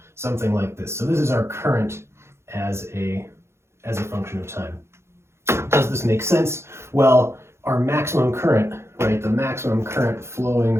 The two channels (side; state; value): left; late; 0.13 ms